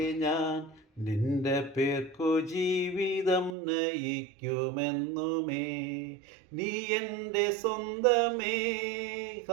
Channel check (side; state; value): left; drops out; at 3.6 s